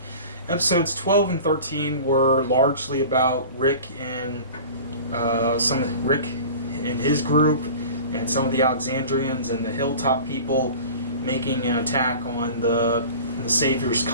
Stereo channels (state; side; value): inverted; both; correlation -0.39